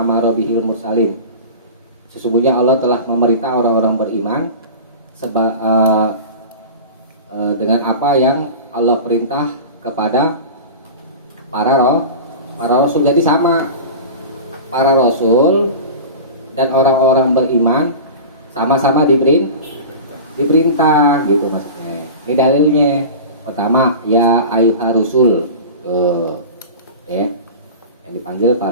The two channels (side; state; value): both; inverted; correlation -0.32